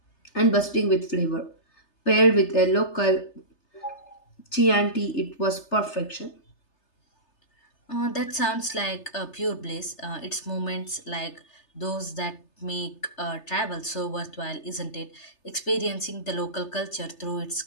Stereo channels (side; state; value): right; late; 3.3 ms